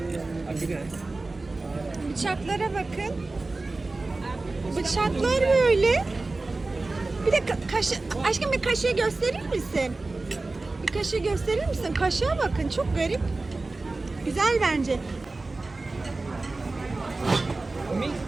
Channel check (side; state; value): left; quieter; 3.3 dB